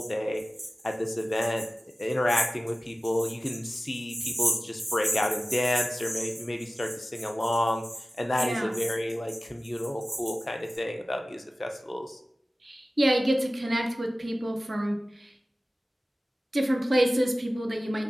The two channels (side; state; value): both; normal; correlation 0.96